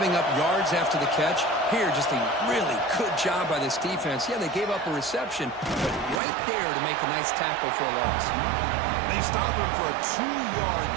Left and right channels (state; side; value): drops out; left; at 6.2 s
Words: up yards after the catch? Here, just a really good job by this defense. Yeah, they gave up a reception, but right there to make a nice tackle for a loss. They stop him for a 2-yard